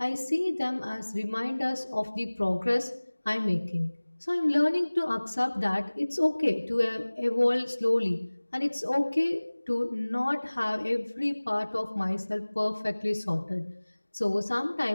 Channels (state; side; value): inverted; both; correlation -1.00